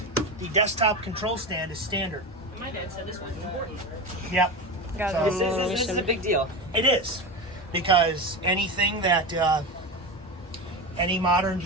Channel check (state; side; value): normal; both; correlation 0.22